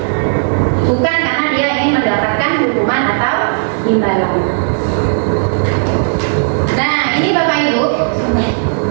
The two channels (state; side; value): silent; left; digital silence